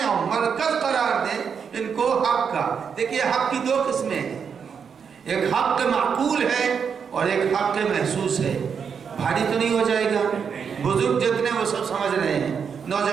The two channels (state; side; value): quieter; left; 6.7 dB